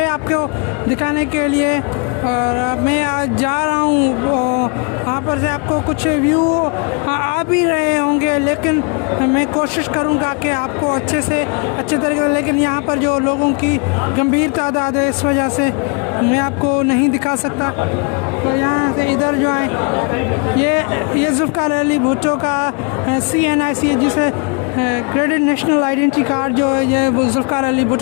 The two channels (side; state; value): right; quieter; 34.6 dB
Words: आपको दिखाने के लिए। और मैं आज जा रहा हूँ, यहाँ पर से आपको कुछ व्यू आ भी रहे होंगे, लेकिन मैं कोशिश करूँगा कि आपको अच्छे तरीके से, लेकिन यहाँ पर जो लोगों की गंभीर तादाद है इस वजह से मैं आपको नहीं दिखा सकता। तो यहाँ से इधर जो है ये जुल्फ़िकार अली भुट्टो का CNIC जिसे क्रेडिट नेशनल आइडेंटिटी कार्ड जो है ये जुल्फ़िकार अली